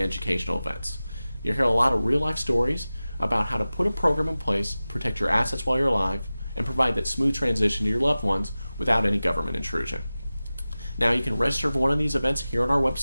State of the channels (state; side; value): inverted; both; correlation -0.96